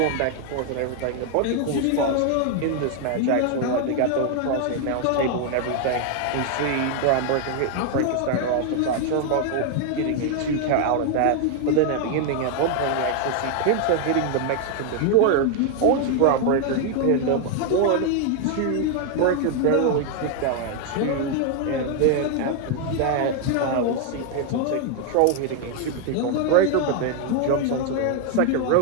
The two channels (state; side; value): different; both; correlation 0.00